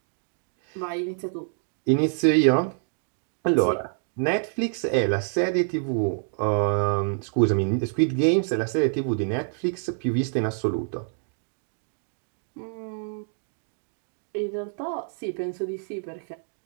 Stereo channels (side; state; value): left; silent; digital silence